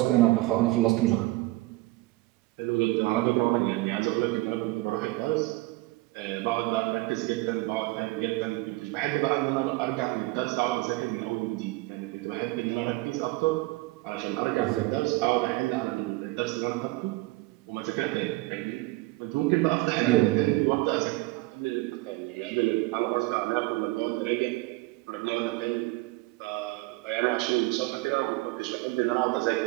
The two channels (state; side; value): quieter; left; 20.9 dB